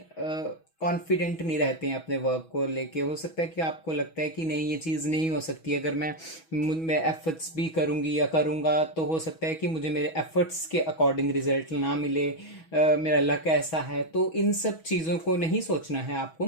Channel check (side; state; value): right; late; 6.2 ms